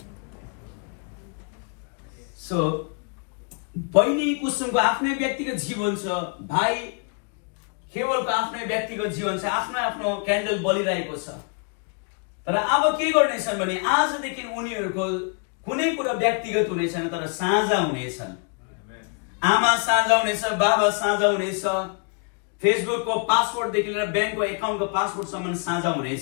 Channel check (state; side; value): quieter; right; 39.6 dB